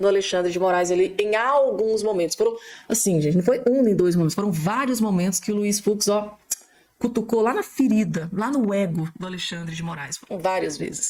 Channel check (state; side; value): identical; both; correlation 1.00